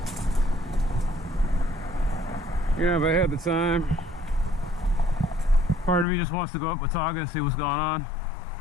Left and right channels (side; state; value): right; drops out; at 6.1 s